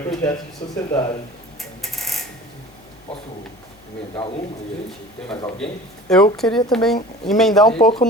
projeto de sociedade. Posso emendar uma e a gente tem mais alguém? Eu queria também emendar um pouco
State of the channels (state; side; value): noise; left; hum, 29 dB below the sound